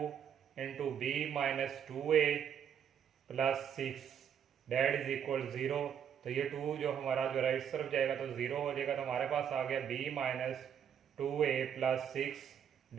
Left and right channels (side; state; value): left; quieter; 8.5 dB